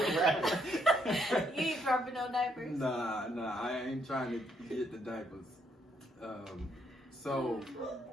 ain't dropping no diapers? Nah, I ain't trying to get the diapers.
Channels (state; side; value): normal; both; correlation 0.73